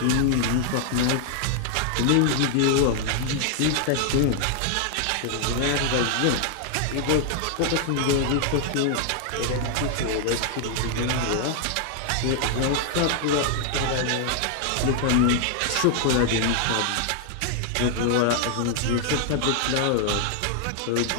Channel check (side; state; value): both; different; correlation 0.00